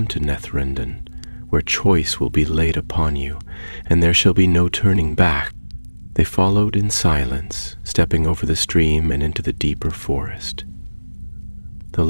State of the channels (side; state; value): both; inverted; correlation -1.00